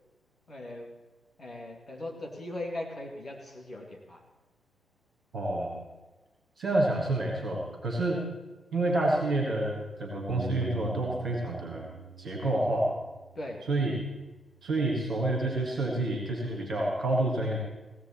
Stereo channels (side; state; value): both; normal; correlation 0.73